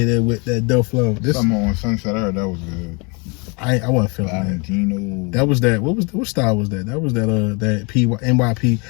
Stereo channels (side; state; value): right; quieter; 31.6 dB